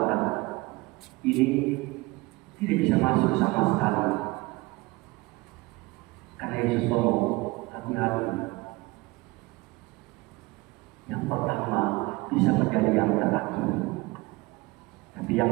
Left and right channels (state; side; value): quieter; left; 22.7 dB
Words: Ini tidak bisa masuk sama sekali. Karena Yesus ngomong, hati-hati. Yang pertama bisa menjadi yang terakhir, tapi